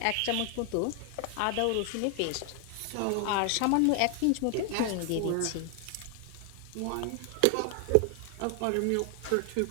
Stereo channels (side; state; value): both; different; correlation 0.00